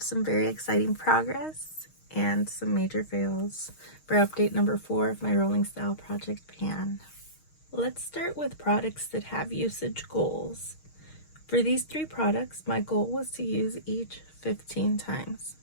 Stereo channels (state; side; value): late; right; 6.4 ms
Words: some very exciting progress and some major fails for update number 4 of my Rolling Style Project Pan. Let's start with products that have usage goals. For these 3 products, my goal was to use each 15 times.